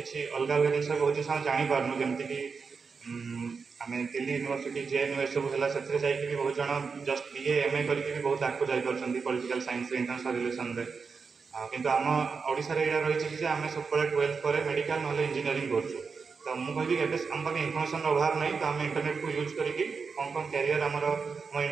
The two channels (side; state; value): left; quieter; 5.2 dB